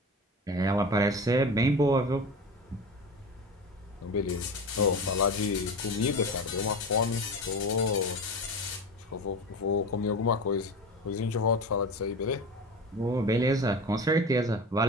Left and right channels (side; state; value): both; normal; correlation 0.29